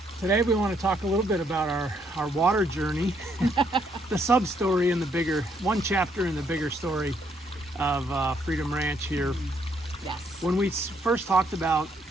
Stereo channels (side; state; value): both; normal; correlation 0.72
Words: Today we want to talk a little bit about our water journey, the sub-story in the bigger, one chapter in the bigger story of Freedom Ranch here. Yes. When we first talked about